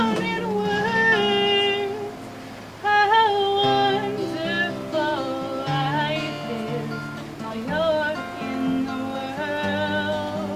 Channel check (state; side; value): identical; both; correlation 1.00